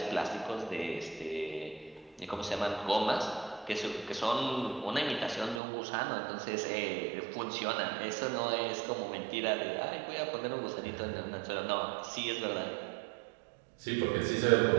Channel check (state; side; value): drops out; left; at 5.6 s